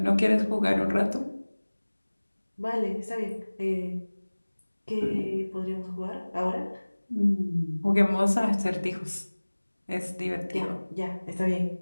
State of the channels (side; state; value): both; inverted; correlation -1.00